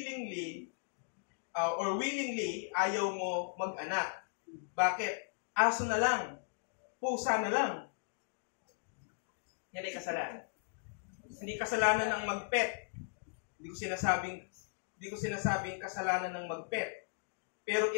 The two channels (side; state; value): right; silent; digital silence